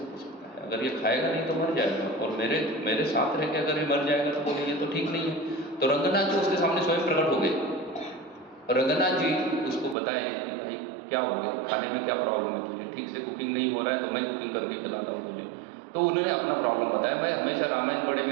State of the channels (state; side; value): drops out; left; at 10.0 s